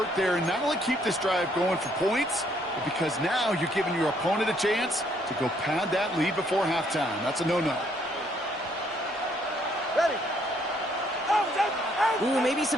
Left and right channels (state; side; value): normal; both; correlation 0.68